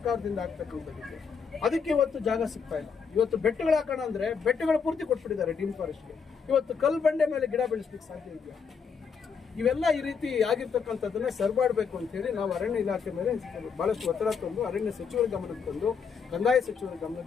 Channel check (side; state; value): right; quieter; 6.0 dB